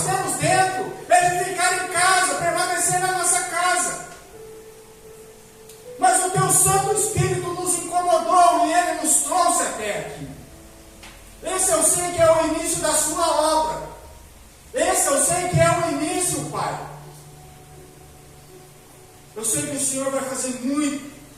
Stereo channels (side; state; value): both; identical; correlation 1.00